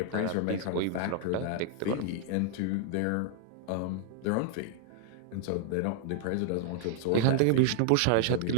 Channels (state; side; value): different; both; correlation 0.00